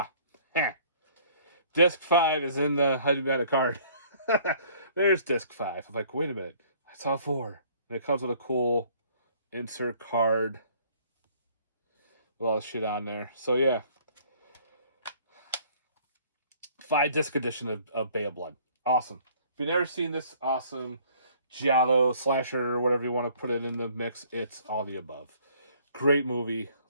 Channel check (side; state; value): both; inverted; correlation -0.58